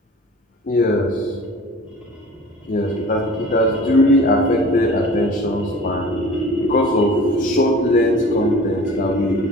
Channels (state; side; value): normal; both; correlation 0.43